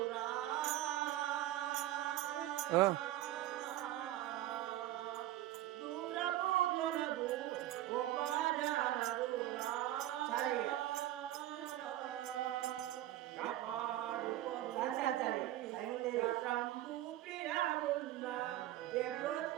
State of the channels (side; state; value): left; quieter; 14.4 dB